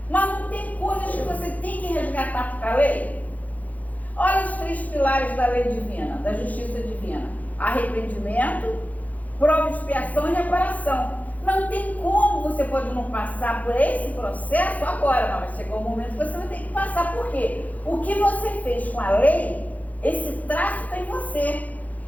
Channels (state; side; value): late; right; 0.077 ms